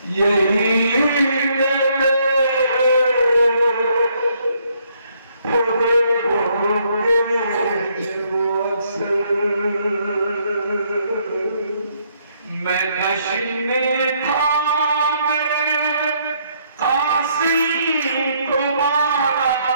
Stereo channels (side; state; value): both; inverted; correlation -0.70